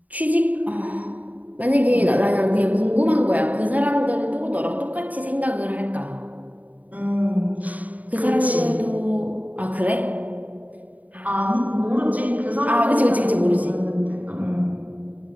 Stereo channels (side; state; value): left; late; 0.074 ms